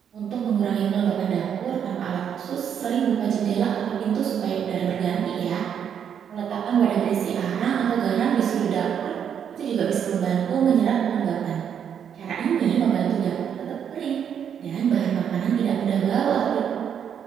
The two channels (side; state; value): left; quieter; 8.3 dB